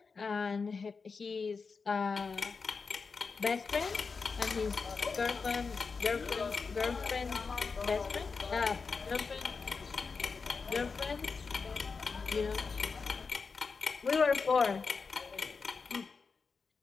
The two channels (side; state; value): right; quieter; 4.9 dB